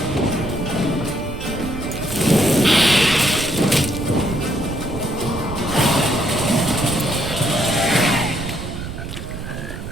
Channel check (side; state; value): right; noise; rumble, 8 dB below the sound